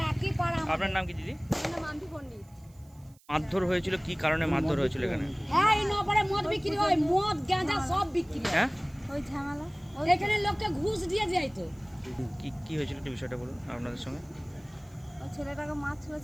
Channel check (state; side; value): noise; right; hiss, 30 dB below the sound